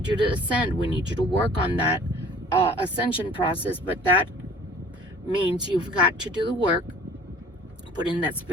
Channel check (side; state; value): both; normal; correlation 0.49